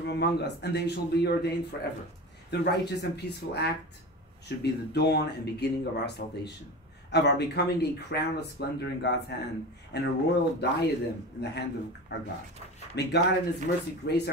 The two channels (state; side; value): normal; both; correlation 0.30